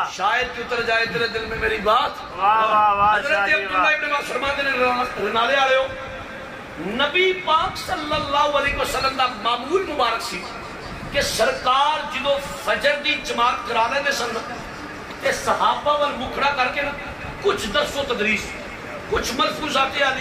شاید کہ اتر جائے تیرے دل میں میری بات. حضرت عبداللہ ابن عباس فرماتے نے رنالے آلے ہو، نبی پاک صلی اللہ علیہ وسلم دا معمول مبارک سی کہ سرکار جدو فجر دی جماعت کرا لے دے سن تے صحابہ وال مکھڑا کر کے نا کچھ درس و تدریس، کچھ ملفوظات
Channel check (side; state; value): both; identical; correlation 1.00